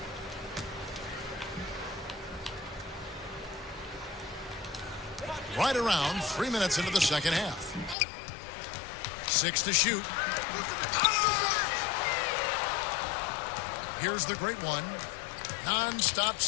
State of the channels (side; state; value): right; drops out; at 8.0 s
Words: Right around 3 minutes into the second half. 6 to shoot. Here's the great one. Non-stop